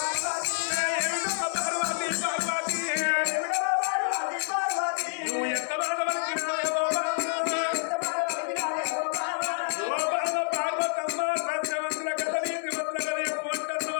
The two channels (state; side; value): silent; right; 59 dB below the other